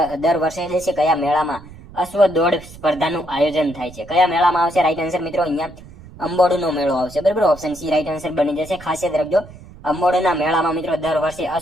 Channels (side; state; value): right; noise; rumble, 19 dB below the sound